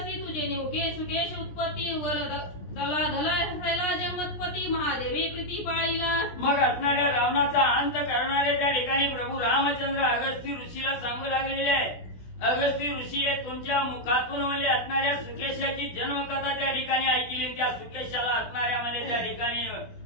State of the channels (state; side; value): late; right; 17 ms